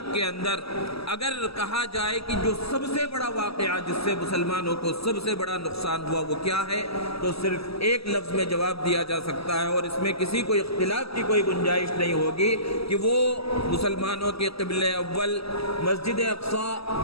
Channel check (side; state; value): right; late; 0.76 ms